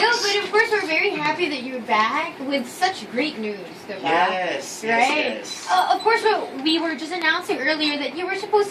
of course we're very happy that you're back with such great news, diba? Yes. Right? Yes. Of course, we were just announcing earlier that you were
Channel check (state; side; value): identical; both; correlation 1.00